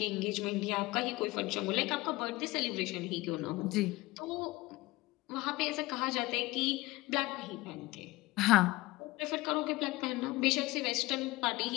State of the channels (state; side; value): quieter; right; 20.1 dB